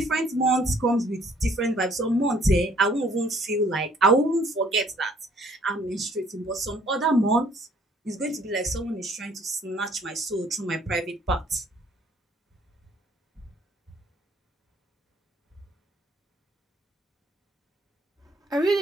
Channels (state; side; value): normal; both; correlation 0.61